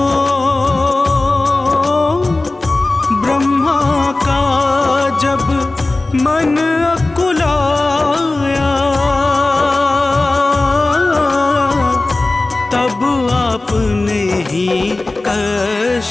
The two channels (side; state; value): right; quieter; 3.1 dB